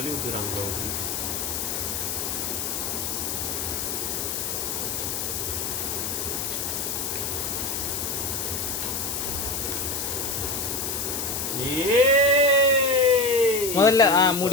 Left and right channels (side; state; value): left; noise; hiss, 2 dB below the sound